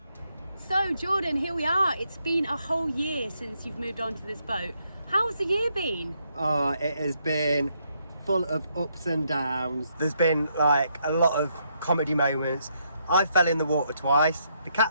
So Jordan, here we are. It's been a whole year since you've moved on to this boat. How's the year been? Oh, it has been full of ups and downs. There's been like a lot of comedy moments. I fell in the water twice, the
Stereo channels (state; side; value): inverted; both; correlation -0.76